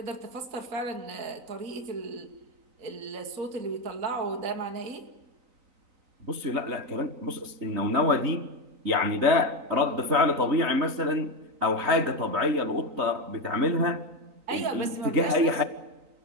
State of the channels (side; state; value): left; late; 3.9 ms